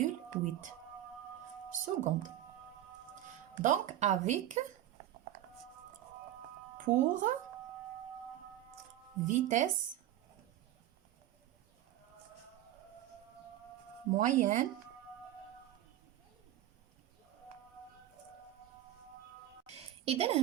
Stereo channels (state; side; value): quieter; left; 13.1 dB